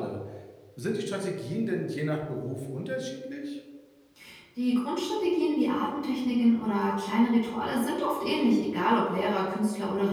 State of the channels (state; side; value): identical; both; correlation 1.00